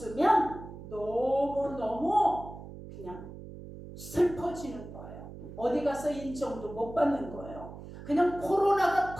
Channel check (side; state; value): right; noise; hum, 13 dB below the sound